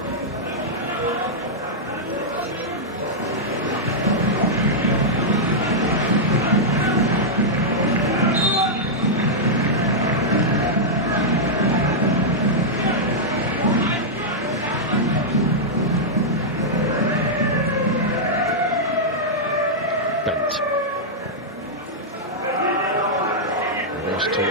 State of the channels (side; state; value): both; normal; correlation -0.08